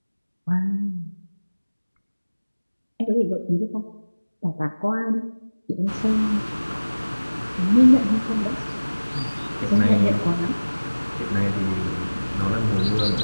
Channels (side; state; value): both; inverted; correlation -1.00